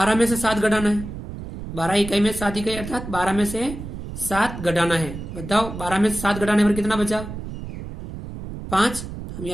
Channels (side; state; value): right; noise; rumble, 9 dB below the sound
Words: में से 7 घटाना है। 12 इकाई में 7 इकाई अर्थात 12 में से 7 घटाना है। बताओ 12 में से 7 घटाने पर कितना बचा? 5। हम